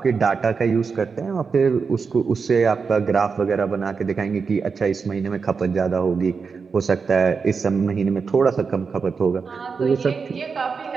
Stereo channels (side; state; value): left; quieter; 5.3 dB